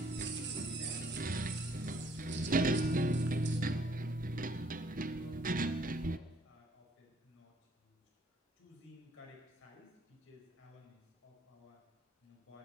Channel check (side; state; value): both; normal; correlation 0.64